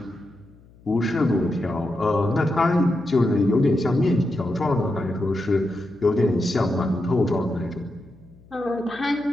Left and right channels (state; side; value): noise; left; hum, 26 dB below the sound